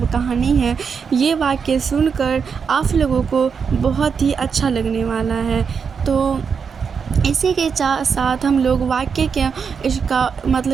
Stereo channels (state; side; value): quieter; left; 6.2 dB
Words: کہانی ہے۔ یہ واقعہ سن کر آپ لوگوں کو بہت ہی اچھا لگنے والا ہے۔ تو اسی کے ساتھ ہم لوگ واقعے